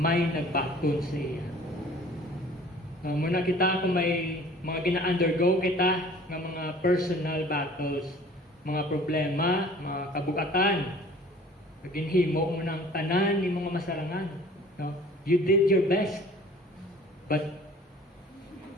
nagbaton sa iya. Muna kita kung may mga gina-undergo kita ng mga personal battles, mga problema, mga kabugatan, ginhimo mo ng tanan ni mga masarangan. No? You did your best, but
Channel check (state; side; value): normal; both; correlation 0.49